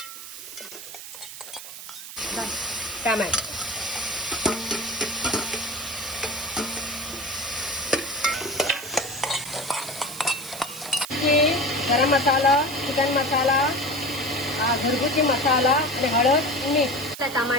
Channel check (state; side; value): noise; right; hiss, 12 dB below the sound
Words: टमाटर, गरम मसाला, चिकन मसाला, घरगुती मसाला आणि हळद, मीठ,